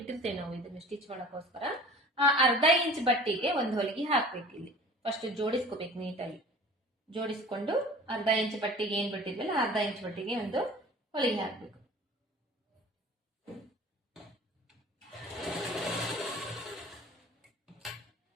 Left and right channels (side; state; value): both; normal; correlation 0.44